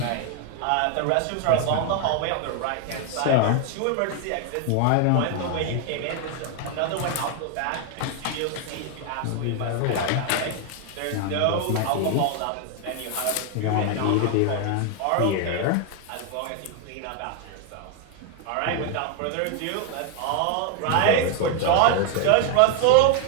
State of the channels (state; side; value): different; both; correlation 0.01